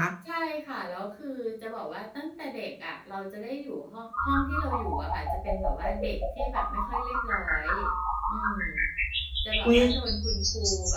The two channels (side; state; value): both; identical; correlation 1.00